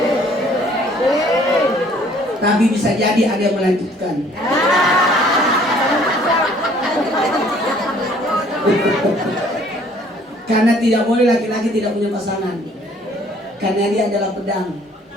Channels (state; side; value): normal; both; correlation 0.58